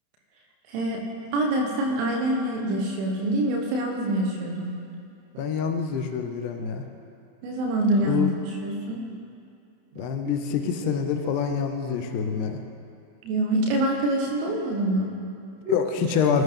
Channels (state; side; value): late; left; 31 ms